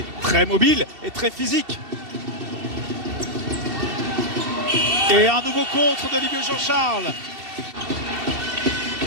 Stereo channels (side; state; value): left; late; 2.7 ms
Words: très mobile et très physique. Et un nouveau contre de Ligue Jean-Charles.